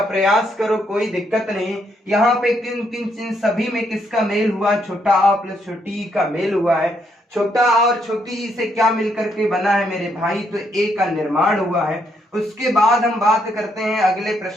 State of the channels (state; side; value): normal; both; correlation 0.75